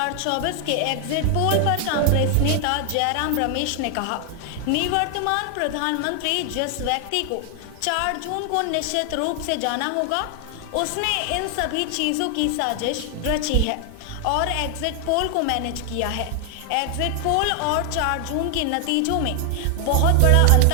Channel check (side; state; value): both; different; correlation 0.00